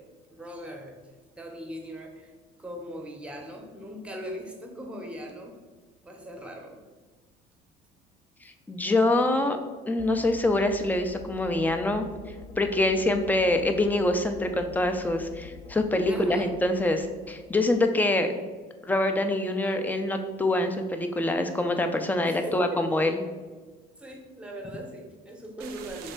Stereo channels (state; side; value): normal; both; correlation 0.68